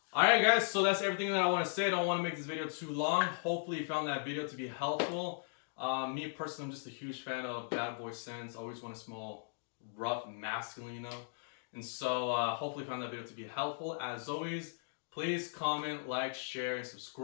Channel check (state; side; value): silent; right; digital silence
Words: Alright guys, so that's everything that I want to say. I don't want to make this video too long. Hopefully you found that video to be helpful. Me personally, I'm just a huge fan of bad boy scents. I always want to smell rough and masculine, you know? And so hopefully you found that video to be helpful. As always, please comment, like, share, and